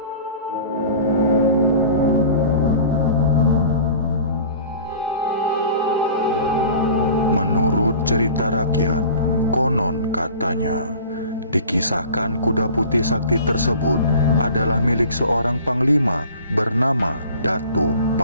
Menurut cerita rakyat, konon katanya, dikisahkan kuda putih sakti tersebut adalah milik seorang panglima bernama Datuk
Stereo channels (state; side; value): inverted; both; correlation -0.43